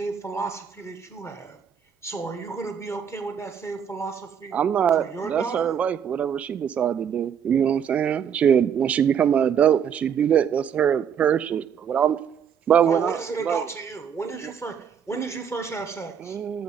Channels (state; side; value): quieter; left; 7.9 dB